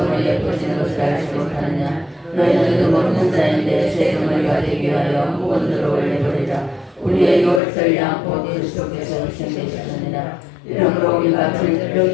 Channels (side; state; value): right; drops out; at 7.6 s